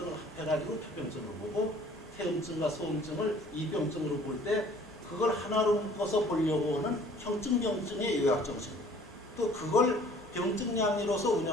합해가지고 표병증으로 보고 태음증과 소음증을 이병증으로 볼 때 그걸 하나로 묶어서 보려고 하는 형증병증의 요약정신, 또 그걸 병증량리로서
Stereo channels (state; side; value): normal; both; correlation 0.53